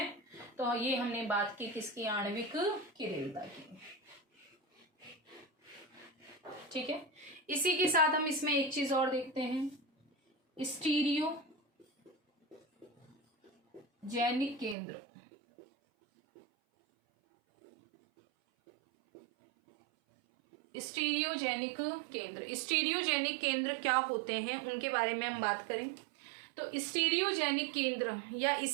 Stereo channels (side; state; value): left; drops out; at 14.8 s